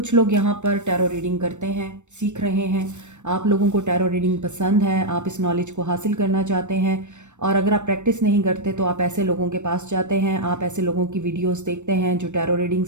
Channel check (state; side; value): late; left; 0.84 ms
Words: लोग यहाँ पर टैरो रीडिंग करते हैं, सीख रहे हैं। आप लोगों को टैरो रीडिंग पसंद है, आप इस नॉलेज को हासिल करना चाहते हैं और अगर आप प्रैक्टिस नहीं करते तो आप ऐसे लोगों के पास जाते हैं, आप ऐसे लोगों की वीडियोस देखते हैं जो टैरो